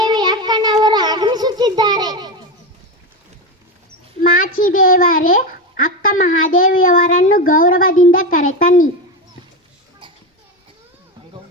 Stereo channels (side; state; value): both; normal; correlation 0.16